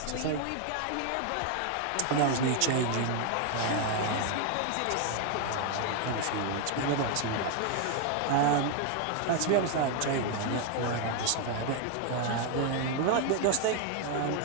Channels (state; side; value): different; both; correlation 0.00